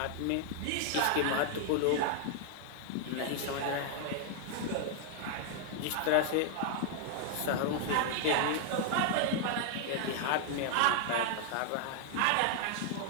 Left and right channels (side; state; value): both; different; correlation 0.00